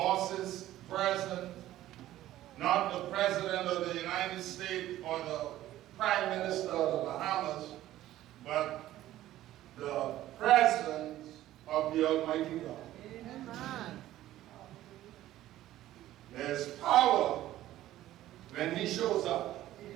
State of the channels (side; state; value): left; quieter; 14.2 dB